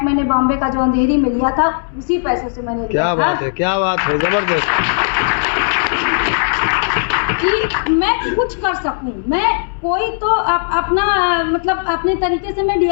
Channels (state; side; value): silent; right; 65 dB below the other